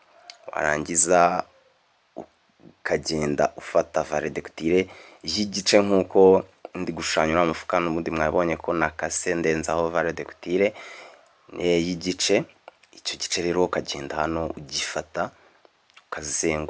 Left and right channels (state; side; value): identical; both; correlation 1.00